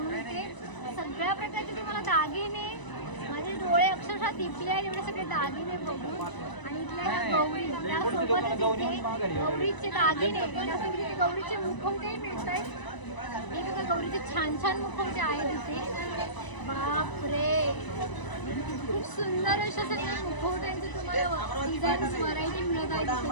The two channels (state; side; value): late; right; 1.0 ms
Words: ते सगळ्या प्रकारचे तुम्हाला दागिने, माझे डोळे अक्षरशः दिपले आहेत एवढे सगळे दागिने बघून. आणि इथल्या ह्या गौरी, त्यासोबतच इथे गौरीचे दागिने, त्यासोबत इथे गौरीचे मुखवटे मिळत आहेत. हे बघा गौरीचे छान छान मुखवटे आहेत इथे. बापरे, खूप सुंदर अशा सगळ्या मुखवट्यांचे तुम्हाला डिझाईन्स व्हरायटी मिळत आहे